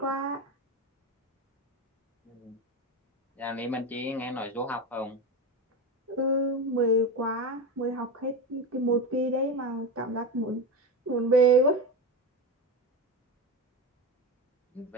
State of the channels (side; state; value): both; normal; correlation 0.20